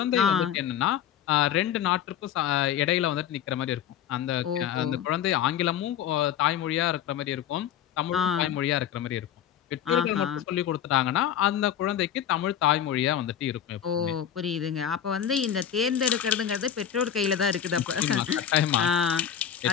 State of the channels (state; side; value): quieter; right; 9.6 dB